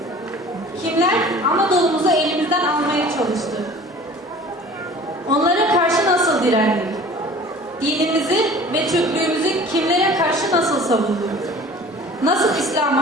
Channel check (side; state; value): both; normal; correlation 0.45